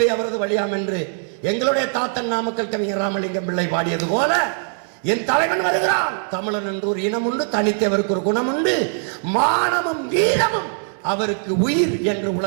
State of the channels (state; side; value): silent; left; digital silence